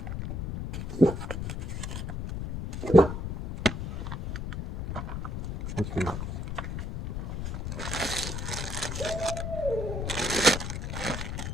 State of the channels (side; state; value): left; noise; rumble, 4 dB below the sound